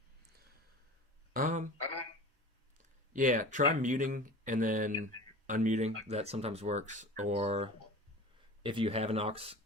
Yeah, try muting and then unmuting. That sometimes works. Or if you have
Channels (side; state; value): both; normal; correlation 0.36